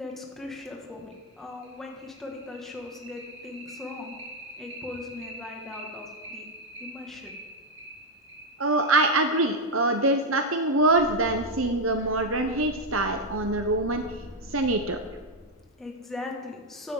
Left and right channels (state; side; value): normal; both; correlation 0.03